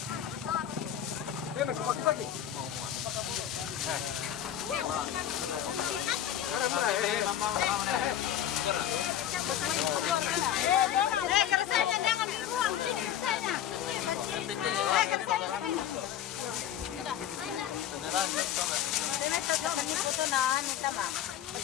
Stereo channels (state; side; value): quieter; right; 10.6 dB